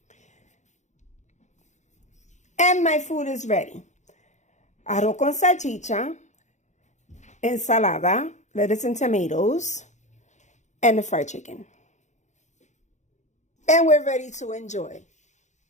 And my food is ready. Arroz con salchicha, ensalada, lettuce and tomatoes, and the fried chicken. And we're ready to enjoy.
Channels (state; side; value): late; right; 0.34 ms